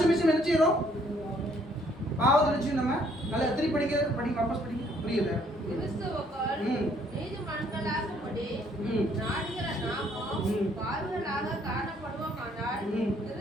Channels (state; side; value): normal; both; correlation 0.65